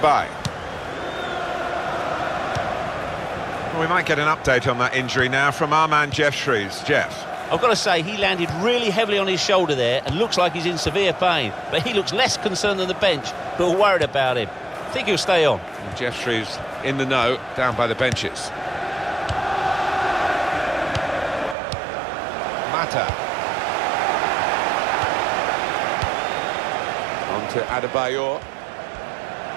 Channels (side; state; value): left; drops out; at 21.6 s